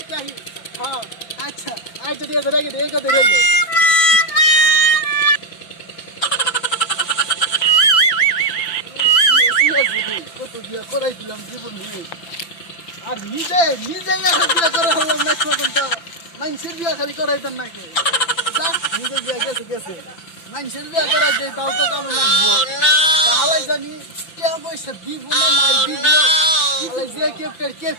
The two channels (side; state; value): right; late; 5.8 ms